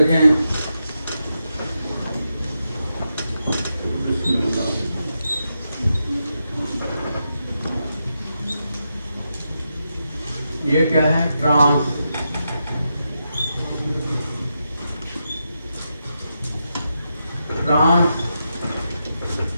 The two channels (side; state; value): both; inverted; correlation -0.86